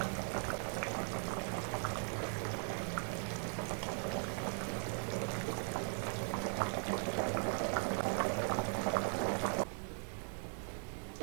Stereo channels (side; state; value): left; silent; 52 dB below the other